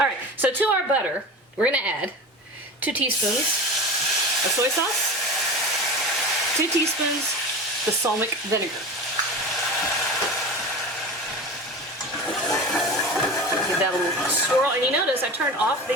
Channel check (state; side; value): normal; both; correlation 0.31